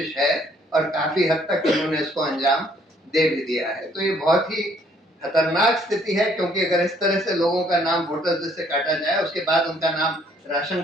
है और काफी हद तक इन्होंने इसको अंजाम दे भी दिया है। तो ये बहुत ही खतरनाक स्थिति है, क्योंकि अगर इस तरह से लोगों का नाम वोटर लिस्ट से काटा जाए, उसके बाद उनका नाम राशन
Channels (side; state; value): both; normal; correlation 0.64